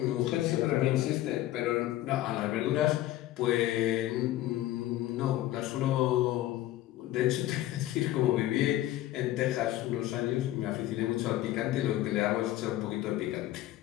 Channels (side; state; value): right; quieter; 14.7 dB